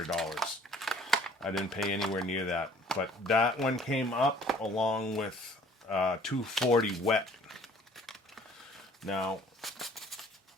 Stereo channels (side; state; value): both; normal; correlation 0.54